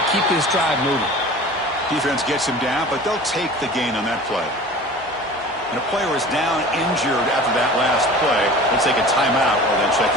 keep this drive moving. Defense gets him down, but they'll take the gain on that play. And a player is down injured after that last play. They'll take a timeout or then check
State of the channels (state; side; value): normal; both; correlation 0.40